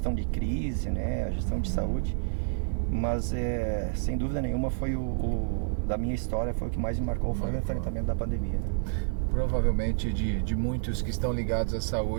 de crise, né? A gestão de saúde. Mas, sem dúvida nenhuma, foi da minha história, foi o que mais me marcou, foi o enfrentamento da pandemia, né? Provavelmente de muitos que estão ligados à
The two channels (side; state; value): left; silent; 56 dB below the other